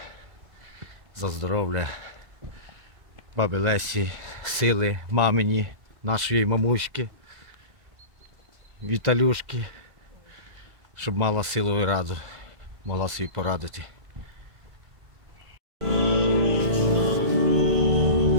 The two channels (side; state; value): left; late; 2.0 ms